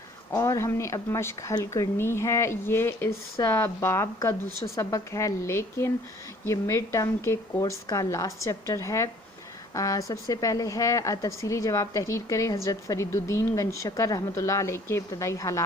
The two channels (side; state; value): both; normal; correlation 0.55